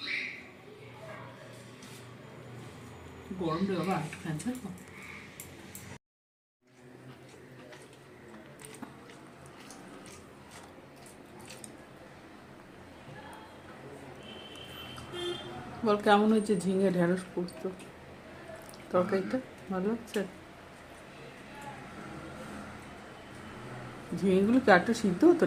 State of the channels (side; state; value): both; identical; correlation 1.00